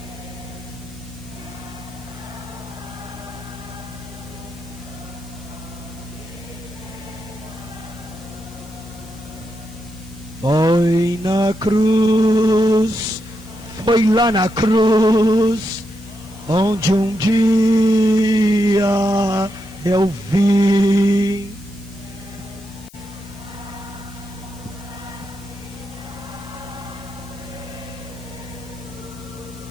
foi na cruz, foi lá na cruz, onde um dia eu vi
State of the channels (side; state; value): left; noise; hiss, 24 dB below the sound